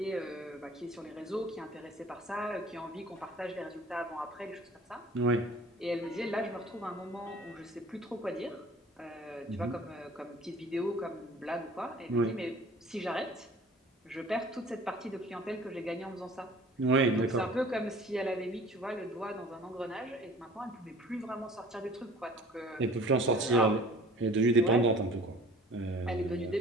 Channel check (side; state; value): both; normal; correlation 0.48